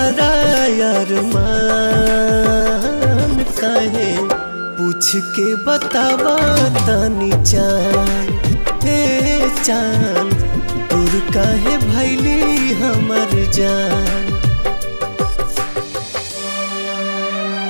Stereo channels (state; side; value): inverted; both; correlation -1.00